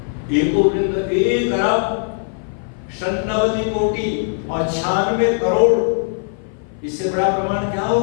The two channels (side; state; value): right; silent; 55 dB below the other